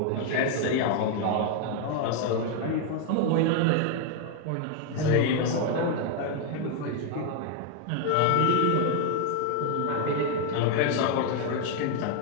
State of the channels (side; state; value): both; different; correlation 0.00